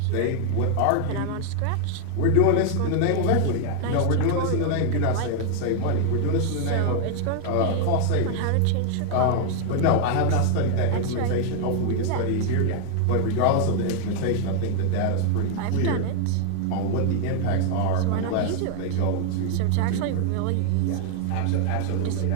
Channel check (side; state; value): both; different; correlation 0.00